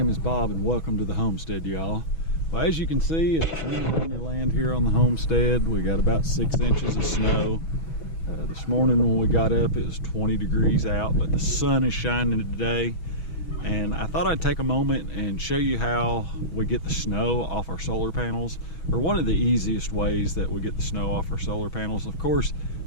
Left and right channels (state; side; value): late; right; 6.2 ms